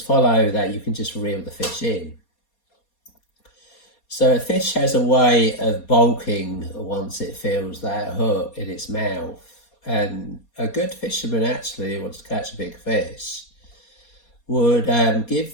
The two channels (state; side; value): late; right; 4.2 ms